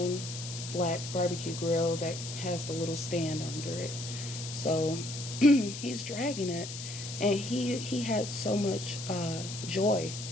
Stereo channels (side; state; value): left; noise; hiss, 9 dB below the sound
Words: black barbecue grill that has the little stand under it. So he's dragging it, and he had so much joy